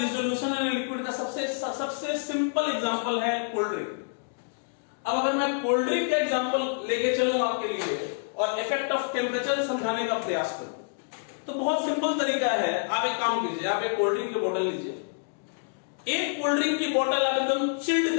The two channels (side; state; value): right; silent; digital silence